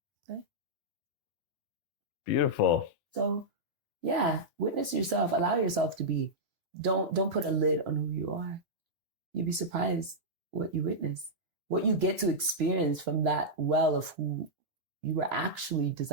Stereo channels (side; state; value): both; normal; correlation -0.09